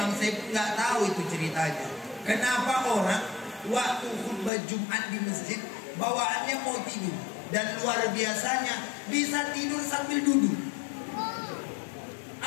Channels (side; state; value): right; drops out; at 4.5 s